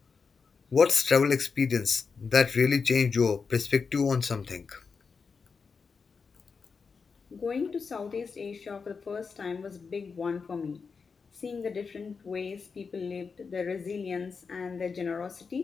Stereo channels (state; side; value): quieter; right; 5.2 dB